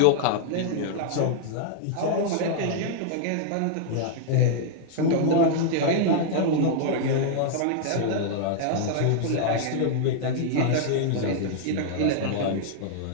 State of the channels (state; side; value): different; both; correlation -0.01